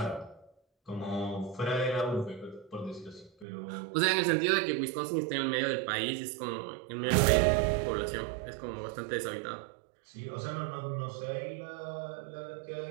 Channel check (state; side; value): drops out; left; at 3.5 s